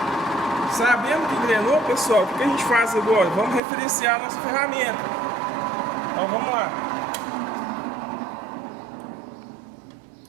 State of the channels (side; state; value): left; drops out; at 3.6 s